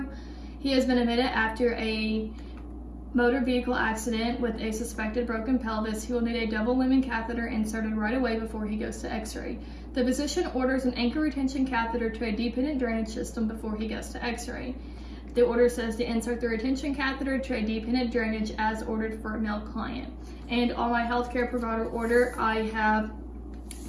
He has been admitted after a motor vehicle accident with a suspected broken pelvis. He will need a double lumen catheter inserted right away before he goes to x-ray. The physician orders an anchor retention catheter to a dependent drainage system before he goes to x-ray. The order says to insert the retention catheter to a dependent drainage as ordered for a male client. And on my healthcare provider order, I have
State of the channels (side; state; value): both; identical; correlation 1.00